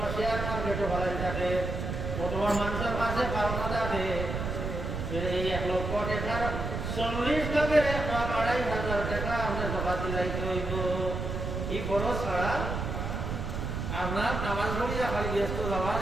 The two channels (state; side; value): noise; right; rumble, 3 dB below the sound